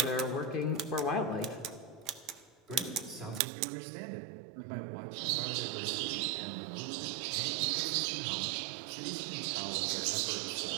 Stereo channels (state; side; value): drops out; left; at 3.4 s